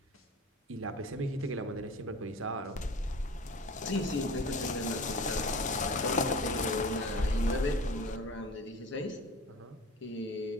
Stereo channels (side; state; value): both; normal; correlation 0.38